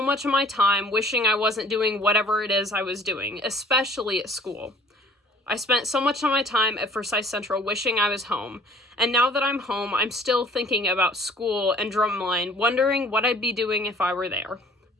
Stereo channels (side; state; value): both; normal; correlation 0.53